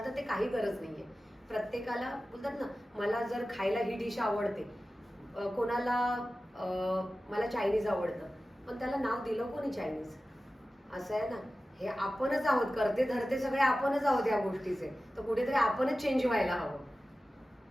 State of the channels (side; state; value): both; normal; correlation 0.95